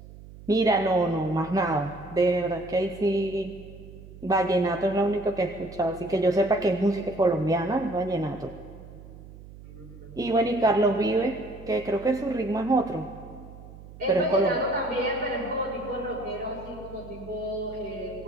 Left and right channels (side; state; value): right; noise; hum, 17 dB below the sound